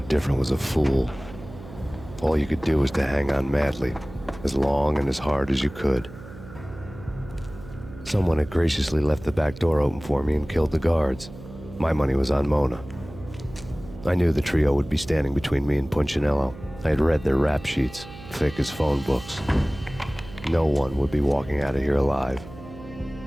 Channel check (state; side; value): noise; right; hum, 16 dB below the sound